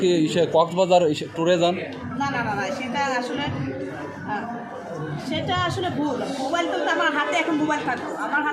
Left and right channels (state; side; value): identical; both; correlation 1.00